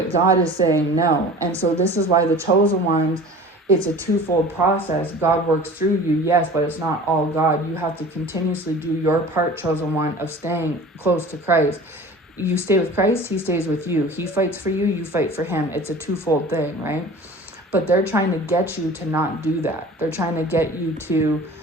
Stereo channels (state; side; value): normal; both; correlation 0.41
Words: God is saying no, and so this is why the chosen ones. It's a twofold process. God works through you, yes, but it's not all God. You have to continuously do your part, chosen one, of staying close to Christ. You stay with Christ, he stays with you. He fights for you, you fight for him. It's a twofold thing, right? But they're trying to get you to not do that. They're trying to get you to